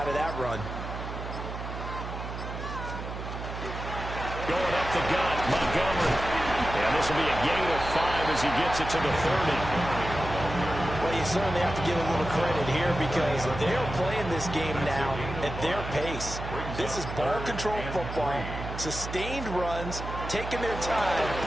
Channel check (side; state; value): right; noise; hum, 7 dB below the sound